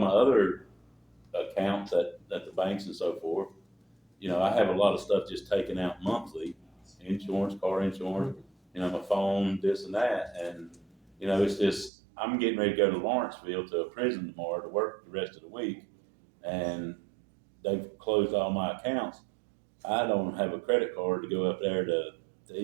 other accounts at the banks and so forth, I have a lot of stuff just taken out monthly, insurance, car insurance, my phone, this and that. And, it's just, I'm getting ready to go to Lawrenceville to a prison tomorrow to work the rest of the week. And they've closed all my accounts. I don't have a credit card to go up there to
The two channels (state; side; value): drops out; left; at 11.9 s